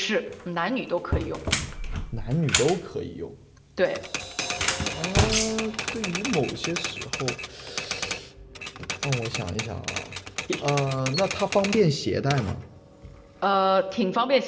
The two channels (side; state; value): both; identical; correlation 1.00